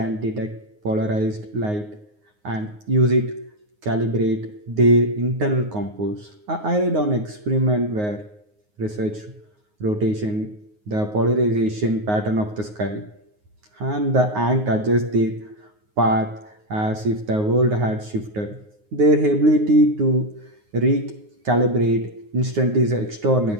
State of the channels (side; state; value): left; late; 9.5 ms